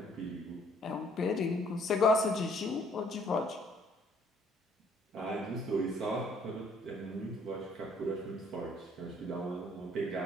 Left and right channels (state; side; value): normal; both; correlation 0.62